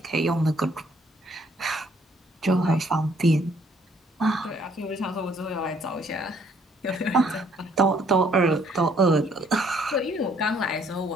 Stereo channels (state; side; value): normal; both; correlation 0.64